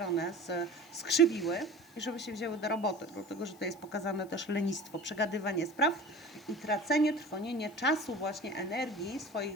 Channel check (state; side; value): noise; left; hiss, 25 dB below the sound